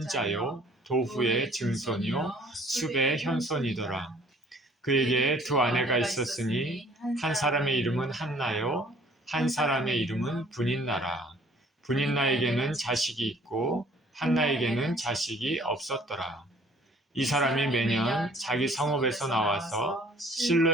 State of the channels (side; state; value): both; normal; correlation 0.56